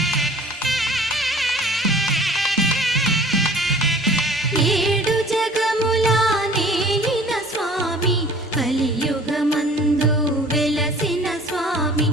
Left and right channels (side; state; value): both; normal; correlation 0.48